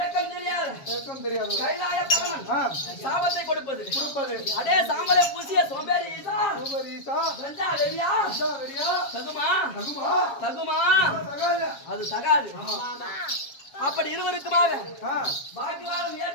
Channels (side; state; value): right; late; 7.2 ms